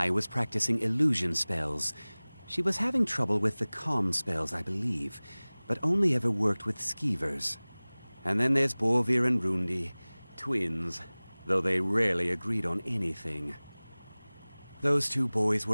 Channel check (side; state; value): both; inverted; correlation -1.00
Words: was practicing illusion spells. She was having trouble with the calm spells, I believe, but only ever worked with skeevers. And then there's Borvir and Rundi, twins, though they rarely agreed on anything. Those 2 boys